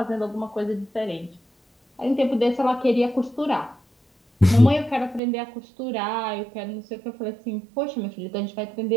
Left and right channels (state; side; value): drops out; left; at 5.2 s